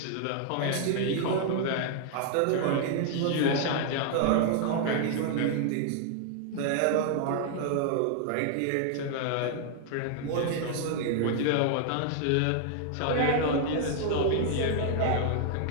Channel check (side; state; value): both; different; correlation 0.00